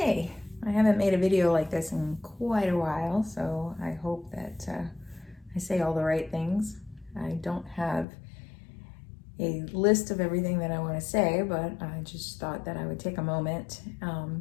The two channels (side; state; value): right; drops out; at 8.1 s